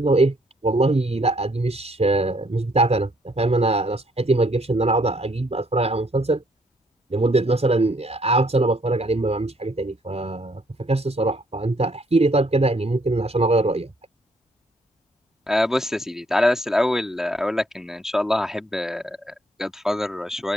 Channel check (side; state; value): both; normal; correlation 0.68